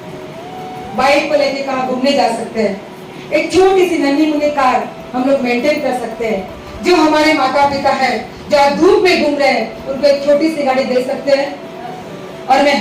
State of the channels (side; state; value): both; identical; correlation 1.00